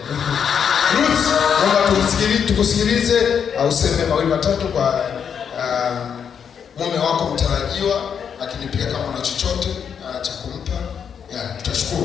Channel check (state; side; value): quieter; right; 7.5 dB